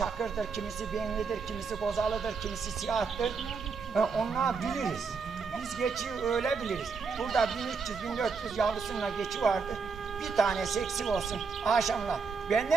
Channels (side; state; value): left; quieter; 5.1 dB